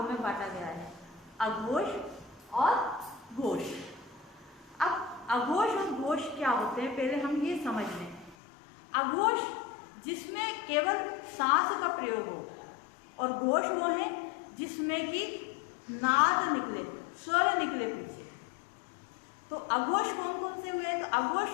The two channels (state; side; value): drops out; right; at 8.3 s